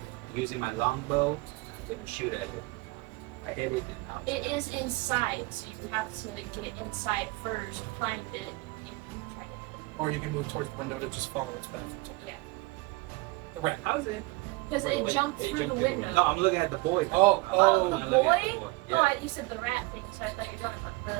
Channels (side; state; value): left; quieter; 23.4 dB